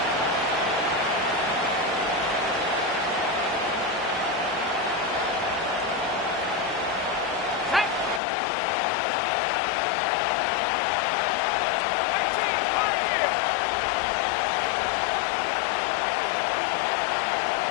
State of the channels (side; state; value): right; drops out; at 8.2 s